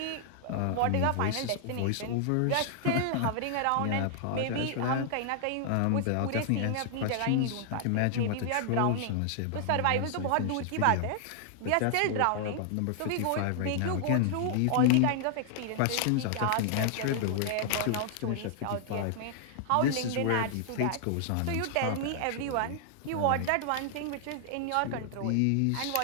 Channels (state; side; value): different; both; correlation 0.00